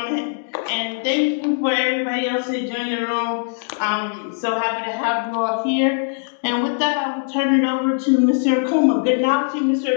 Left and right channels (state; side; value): silent; right; digital silence